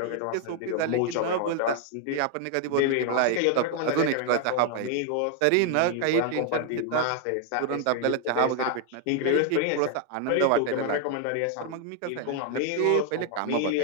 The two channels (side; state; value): both; different; correlation 0.00